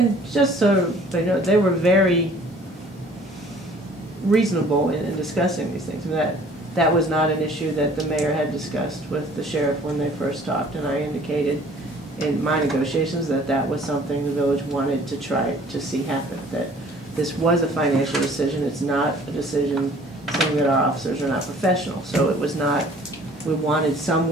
just so they know, they were very reasonable in discussing these things. That was not an issue that the mayor had discussed with the sheriff when they first talked, and I indicated in my negotiations that that was something the village wanted to try to see happen, that this was a financial decision, it's not a decision saying that our officers are not professional. So it was not, we wanted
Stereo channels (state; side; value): normal; both; correlation 0.53